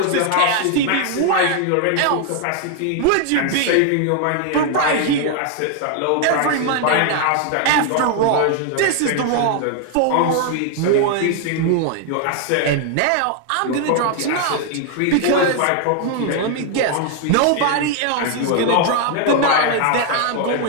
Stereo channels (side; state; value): both; different; correlation 0.00